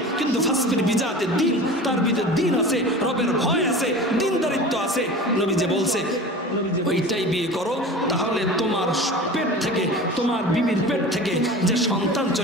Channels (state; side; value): normal; both; correlation 0.35